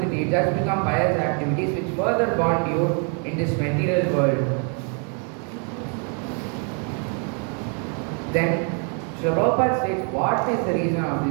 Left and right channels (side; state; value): left; quieter; 39.7 dB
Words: it does become pious activities which further bond you in this material world. Then Srila Prabhupada states, what is the reason of